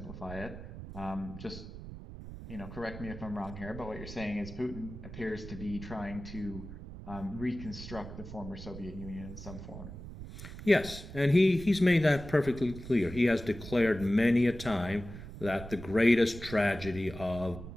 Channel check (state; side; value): noise; right; rumble, 12 dB below the sound